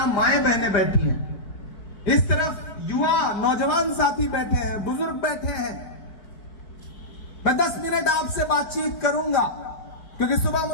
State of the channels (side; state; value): right; late; 4.9 ms